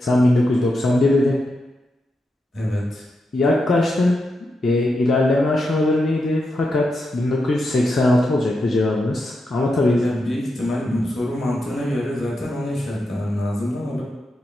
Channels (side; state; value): both; normal; correlation 0.86